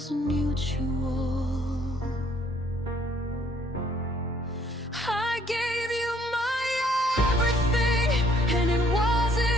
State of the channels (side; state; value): both; normal; correlation 0.64